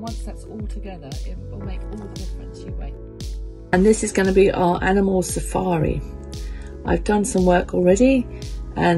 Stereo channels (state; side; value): identical; both; correlation 1.00